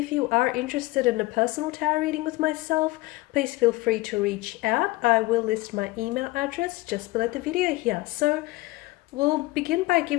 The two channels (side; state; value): right; quieter; 20.5 dB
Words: you are interested in a personal tarot reading with myself, please feel free to reach out. I will list my email address just below the video here. So we'll begin by